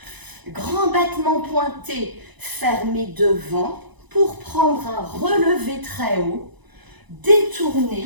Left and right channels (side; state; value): left; late; 1.0 ms